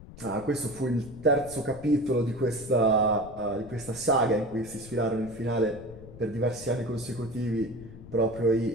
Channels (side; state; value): left; noise; rumble, 16 dB below the sound